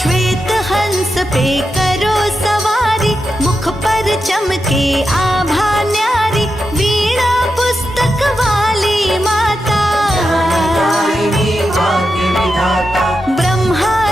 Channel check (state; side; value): normal; both; correlation 0.88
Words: हंस पे करो सवारी, मुख पर चमके आभा न्यारी, वीणा पुस्तक वाली माता। दायिनी भाग्य विधाता, ब्रह्मा